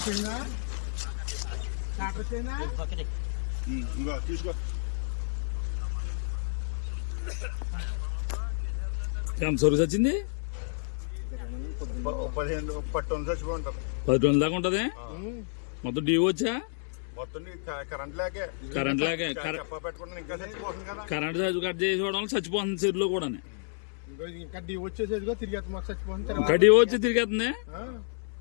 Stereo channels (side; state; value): right; silent; 58 dB below the other